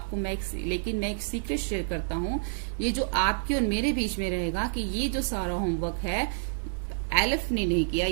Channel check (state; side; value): silent; left; digital silence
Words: मैं एक सीक्रेट शेयर करता हूं, ये जो आपके और मेरे बीच में रहेगा कि ये जो सारा होमवर्क है एलिफ ने नहीं किया,